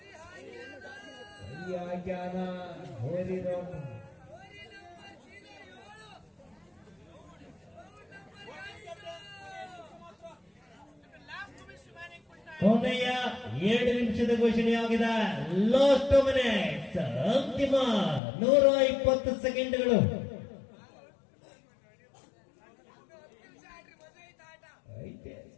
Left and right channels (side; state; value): right; drops out; at 18.2 s